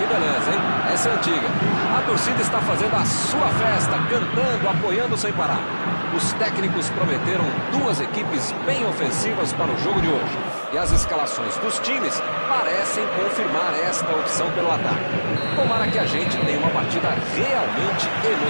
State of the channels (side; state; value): both; inverted; correlation -1.00